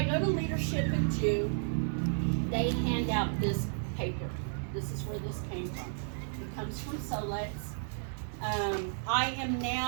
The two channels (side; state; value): left; silent; 56 dB below the other